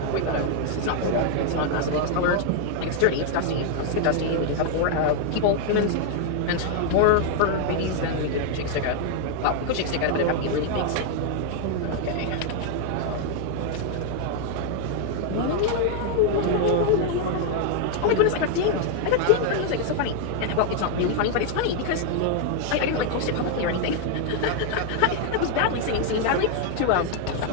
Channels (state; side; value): different; both; correlation 0.00